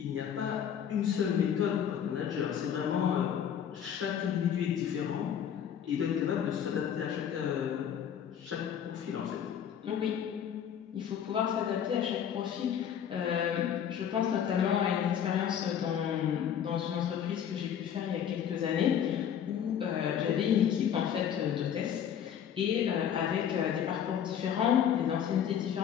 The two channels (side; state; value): right; quieter; 8.9 dB